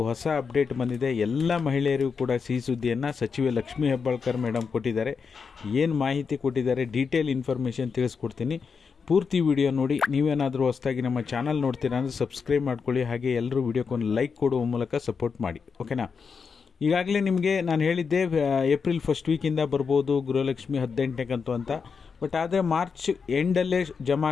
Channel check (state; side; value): quieter; right; 5.6 dB